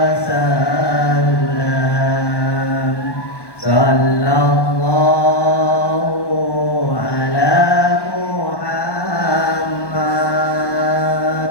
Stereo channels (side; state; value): right; late; 1.1 ms